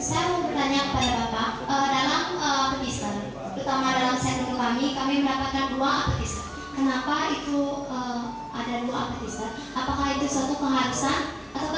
Saya mau bertanya kepada Bapak, dalam appetizer, terutama dalam set menu kami mendapatkan 2 appetizer. Kenapa itu ada 2 appetizer? Apakah itu suatu keharusan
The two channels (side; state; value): both; identical; correlation 1.00